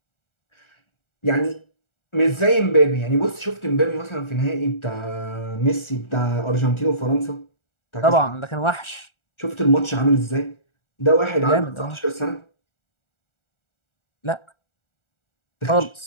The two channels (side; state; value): right; late; 1.4 ms